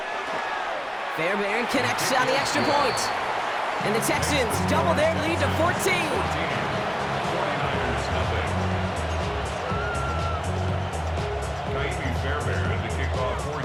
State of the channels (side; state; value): both; identical; correlation 1.00